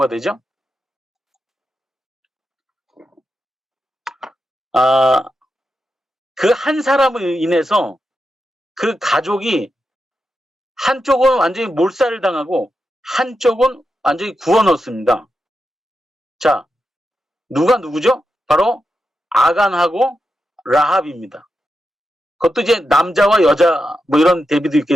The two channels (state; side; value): normal; both; correlation 0.88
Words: 되죠? 그 한 사람을 인해서 그 가족이 한쪽은 완전히 몰살을 당하고 한쪽은 완전히 구워 넣었습니다. 자, 누구죠? 바로 아간하고 라합입니다. 그것도 이제 남자와 여자 뭐 이런 대비도